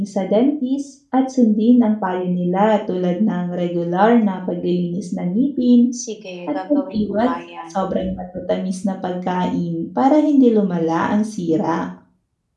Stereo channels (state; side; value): identical; both; correlation 1.00